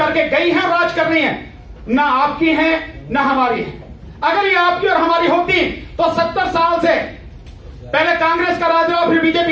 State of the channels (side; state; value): both; identical; correlation 1.00